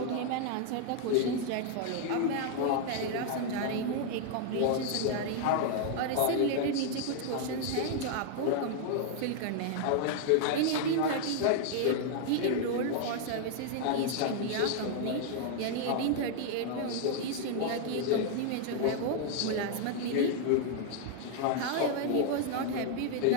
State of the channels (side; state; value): both; different; correlation 0.00